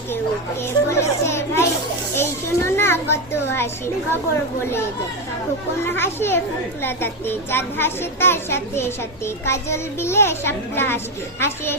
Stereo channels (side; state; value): both; normal; correlation 0.10